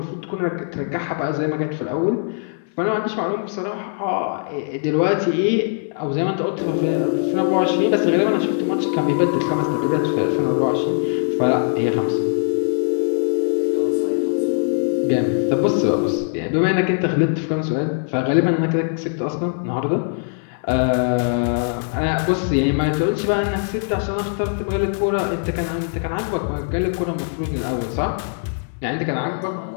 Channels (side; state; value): right; silent; digital silence